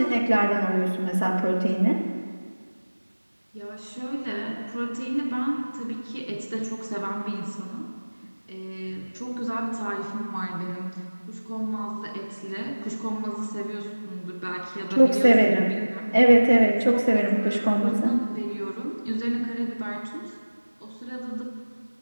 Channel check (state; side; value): inverted; both; correlation -1.00